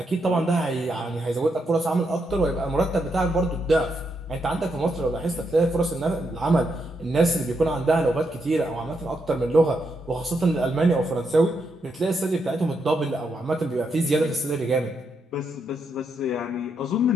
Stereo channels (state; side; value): normal; both; correlation 0.80